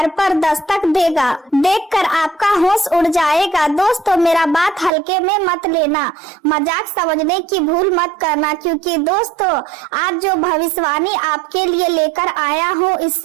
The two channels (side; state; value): left; drops out; at 4.9 s